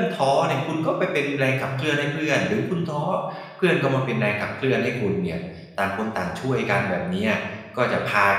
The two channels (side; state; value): both; identical; correlation 1.00